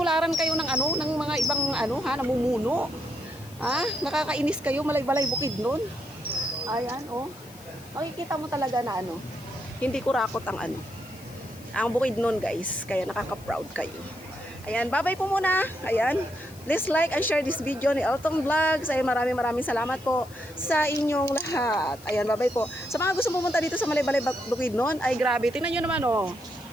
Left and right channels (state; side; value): noise; left; hiss, 22 dB below the sound